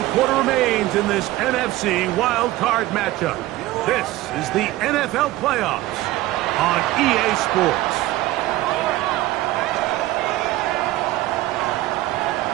quarter remains in this NFC wild card matchup. This is the NFL playoffs on EA Sports.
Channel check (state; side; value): quieter; left; 16.9 dB